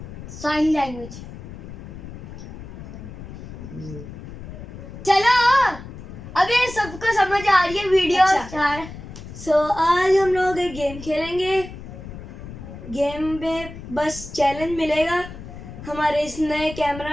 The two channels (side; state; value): left; noise; rumble, 12 dB below the sound